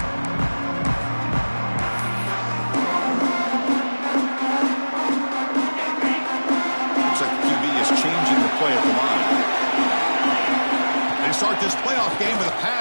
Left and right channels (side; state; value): both; inverted; correlation -1.00